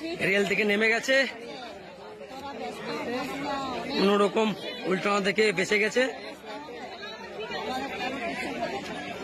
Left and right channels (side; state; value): both; identical; correlation 1.00